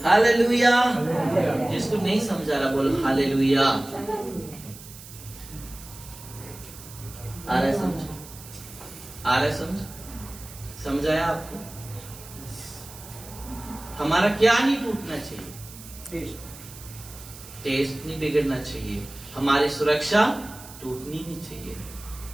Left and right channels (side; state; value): right; noise; hiss, 17 dB below the sound